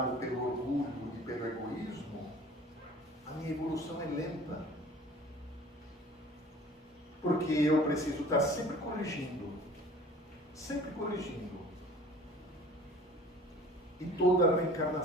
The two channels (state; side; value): normal; both; correlation 0.47